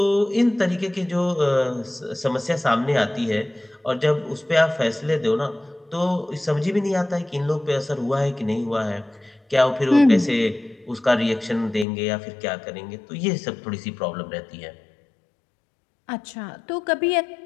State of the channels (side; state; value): right; drops out; at 11.9 s